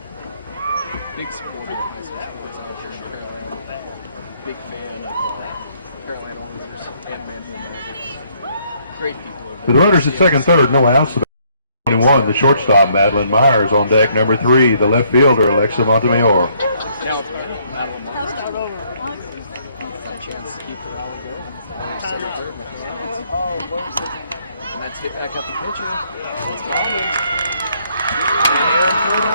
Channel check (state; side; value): inverted; both; correlation -0.67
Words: Big supporter of high school sports out here in Pearland. Big fan of Pearland Oilers and Manvel Mavericks. Great people over there. With runners at second, third, no outs. 21, the shortstop, Madeline Myers on deck. Number 3, the left fielder, Alexa Montemayor. Now it's Madeline Myers. Chance to keep the ball going. Second, third, and that's hit back at the pitcher. It's Myers. And Aaron put